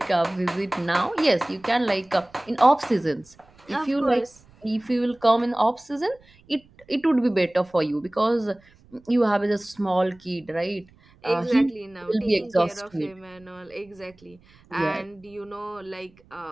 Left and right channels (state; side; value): noise; right; rumble, 29 dB below the sound